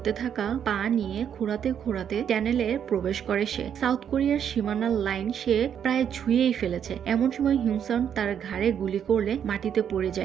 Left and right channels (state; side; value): quieter; left; 8.6 dB